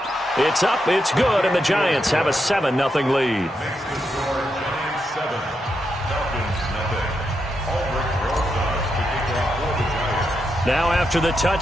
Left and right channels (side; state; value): both; normal; correlation 0.84